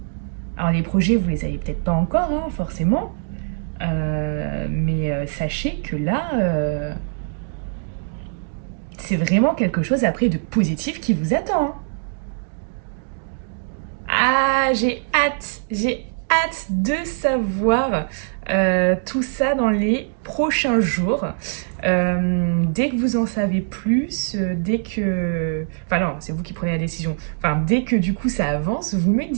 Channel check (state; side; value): silent; left; digital silence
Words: Alors les projets, vous les avez peut-être pas encore, hein, forcément, mais sachez que là, c'est vraiment quelque chose après de positif qui vous attend, hein. Ah, j'ai hâte de savoir tout ça dans les prochains jours. Dès que vous en savez plus, dès que... Enfin non, c'est vous qui prenez la décision. Enfin, dès que du coup ça avance, vous me